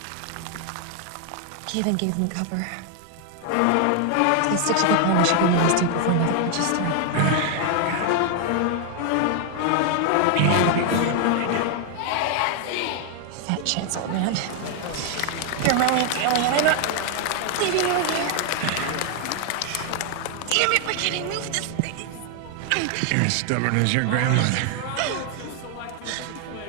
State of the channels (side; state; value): both; different; correlation 0.00